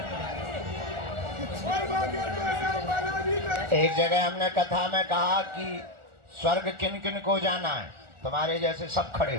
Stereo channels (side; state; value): left; late; 1.4 ms